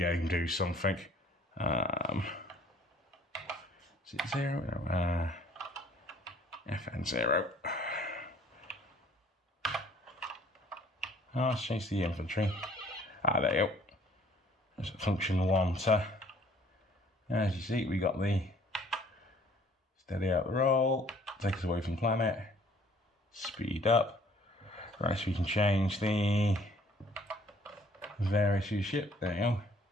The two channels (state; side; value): normal; both; correlation 0.57